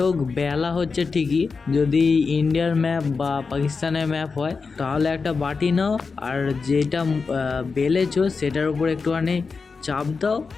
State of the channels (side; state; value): right; quieter; 4.7 dB